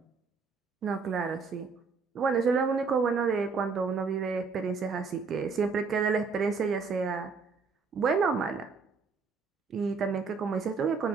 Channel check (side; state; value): left; quieter; 5.0 dB